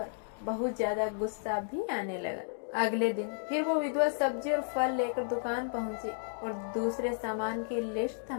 बहुत ज्यादा गुस्सा भी आने लगा। अगले दिन फिर वो विधवा सब्जी और फल लेकर दुकान पहुंची और दूसरे सामान की लिस्ट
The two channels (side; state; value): right; silent; digital silence